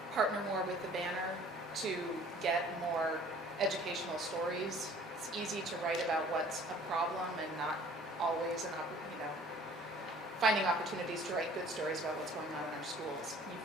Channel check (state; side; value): normal; both; correlation 0.51